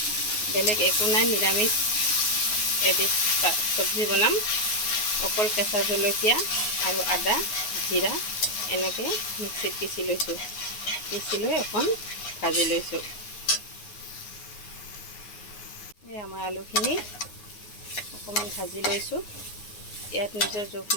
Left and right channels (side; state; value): right; late; 9.5 ms